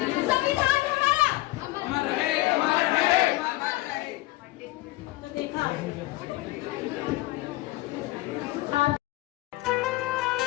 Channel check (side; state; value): right; quieter; 18.9 dB